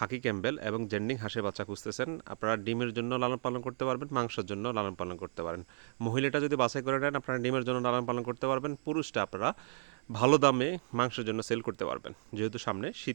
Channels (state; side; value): silent; left; digital silence